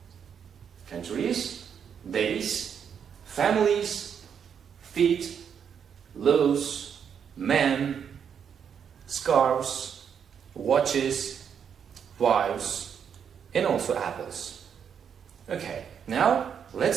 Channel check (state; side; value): quieter; left; 7.6 dB